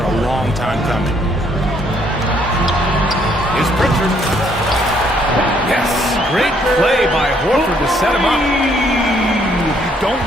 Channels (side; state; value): both; normal; correlation 0.67